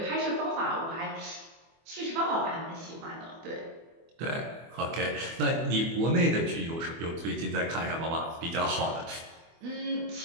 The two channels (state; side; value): late; left; 24 ms